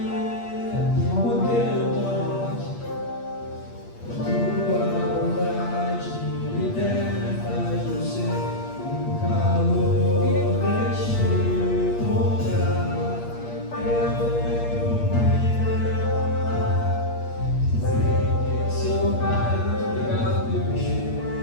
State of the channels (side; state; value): right; late; 8.5 ms